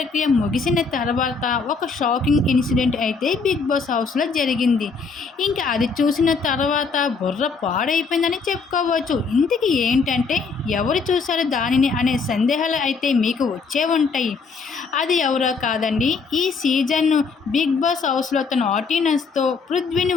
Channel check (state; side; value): quieter; right; 4.8 dB